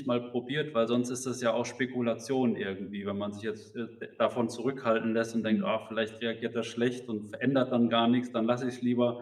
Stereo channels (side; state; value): both; identical; correlation 1.00